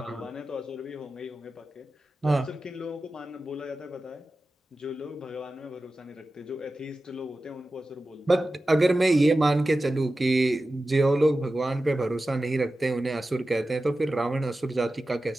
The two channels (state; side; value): normal; both; correlation 0.94